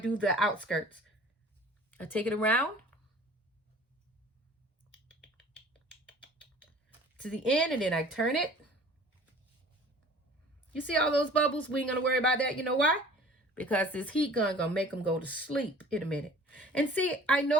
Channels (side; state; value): both; normal; correlation 0.47